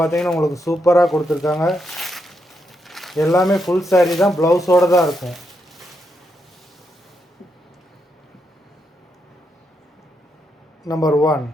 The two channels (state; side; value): normal; both; correlation 0.81